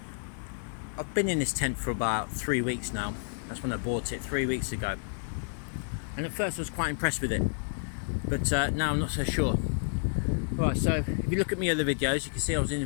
been in this tent for about 3 weeks now. That's when I bought it 3 weeks ago. And at first I was quite impressed with it, but now I'm not so sure. Alright, so if you look at my other videos, you can see I was in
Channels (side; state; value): right; silent; digital silence